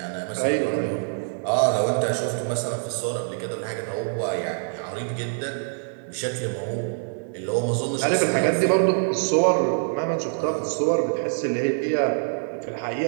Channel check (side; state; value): left; silent; 62 dB below the other